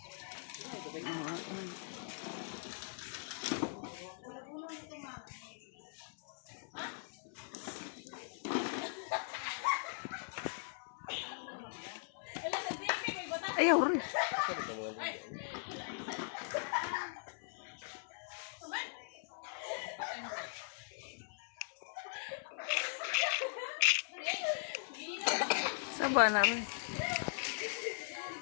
Ayaw rin. Saba na rin.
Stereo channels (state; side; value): silent; right; 51 dB below the other